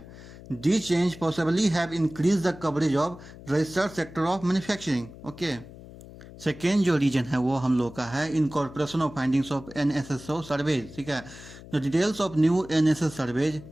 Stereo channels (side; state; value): left; noise; hum, 17 dB below the sound